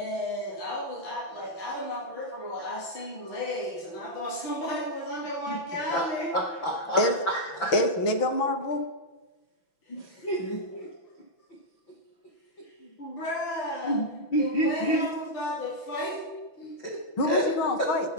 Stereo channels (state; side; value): late; right; 6.0 ms